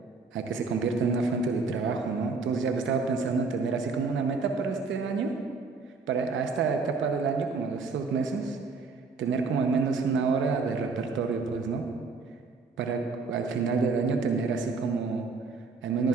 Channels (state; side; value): quieter; left; 4.4 dB